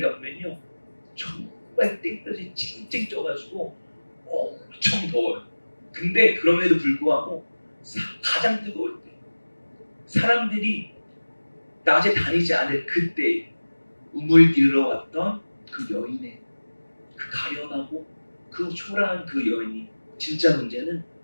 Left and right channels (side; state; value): both; inverted; correlation -1.00